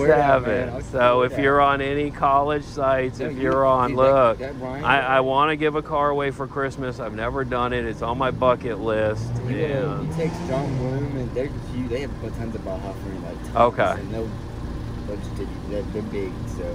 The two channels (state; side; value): identical; both; correlation 1.00